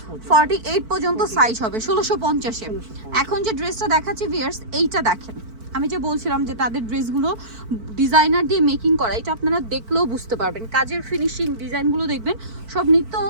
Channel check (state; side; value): late; left; 4.5 ms